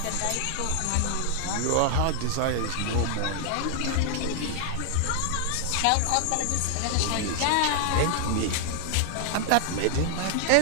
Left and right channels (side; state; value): both; different; correlation 0.00